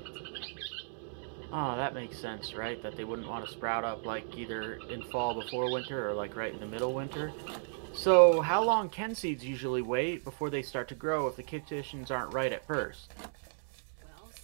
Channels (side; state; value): left; silent; digital silence